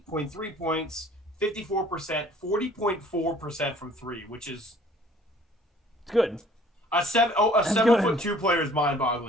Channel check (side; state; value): both; normal; correlation 0.54